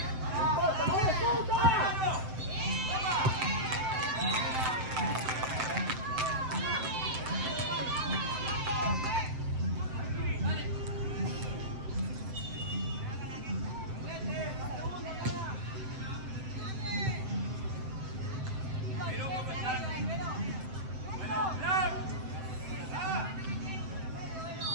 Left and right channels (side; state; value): left; late; 7.8 ms